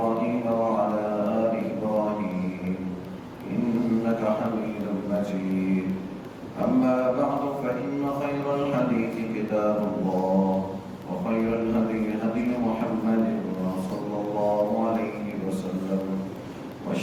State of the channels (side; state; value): both; identical; correlation 1.00